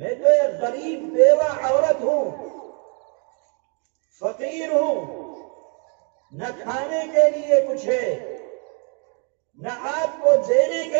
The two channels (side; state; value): left; quieter; 38.3 dB